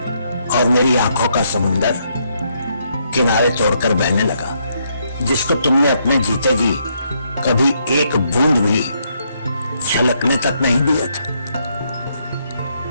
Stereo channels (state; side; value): inverted; both; correlation -0.75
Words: और मेरी आंखों का समुंदर किनारे तोड़कर बहने लगा, जिसको तुमने अपने जीते जी कभी एक बूंद भी छलकने तक नहीं दिया था।